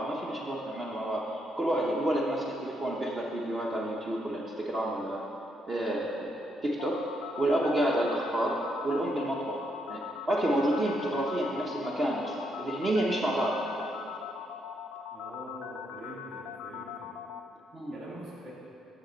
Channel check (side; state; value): both; normal; correlation 0.77